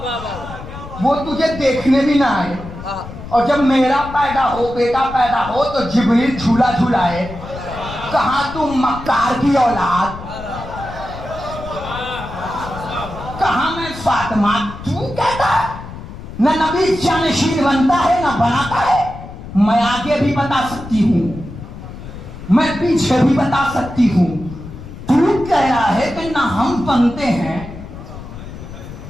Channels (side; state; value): left; noise; rumble, 13 dB below the sound